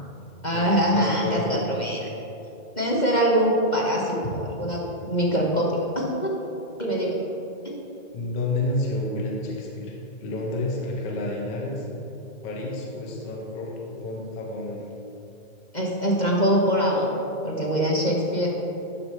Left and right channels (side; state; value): right; late; 2.1 ms